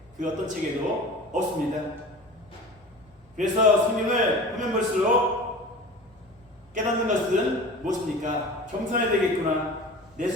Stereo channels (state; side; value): normal; both; correlation 0.37